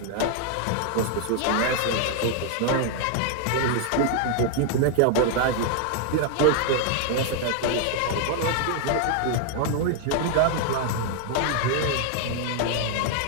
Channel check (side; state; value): both; different; correlation 0.00